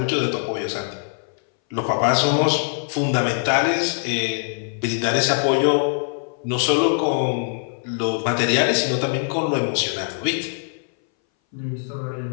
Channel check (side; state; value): right; silent; 61 dB below the other